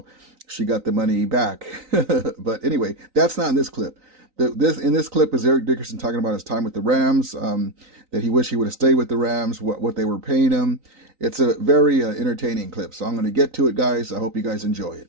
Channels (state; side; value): late; left; 3.9 ms